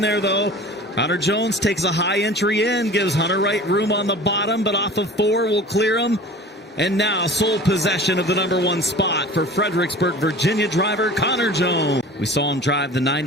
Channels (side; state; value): both; normal; correlation 0.40